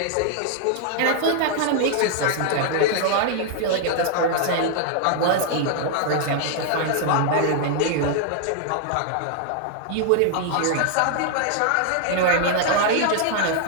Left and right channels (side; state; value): both; different; correlation 0.00